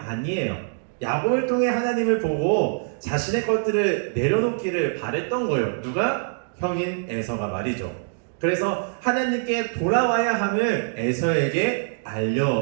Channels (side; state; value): left; silent; digital silence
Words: 야곱을 통해 하나님을 보고 자신의 것들을 내려놓기를 바랬던 거예요. 누가? 형인 에서가 말이죠. 그래서 하나님께 돌아와야 함을 에서에게